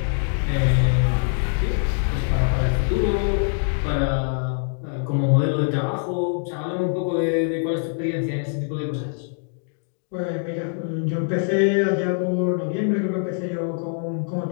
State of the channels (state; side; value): silent; right; digital silence